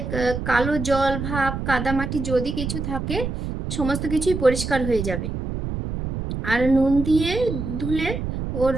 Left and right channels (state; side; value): noise; right; rumble, 5 dB below the sound